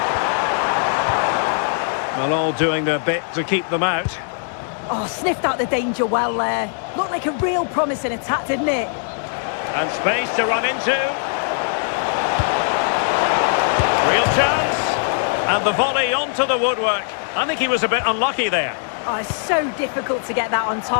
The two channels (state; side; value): silent; right; 61 dB below the other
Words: Well, all doing their bit to keep them out. Oh, sniffed out the danger well there. Looked like a real promising attack, didn't it? And space to run into. Real chance. And the volley onto the woodwork. I think he was a bit unlucky there. Oh, it's so difficult to get that on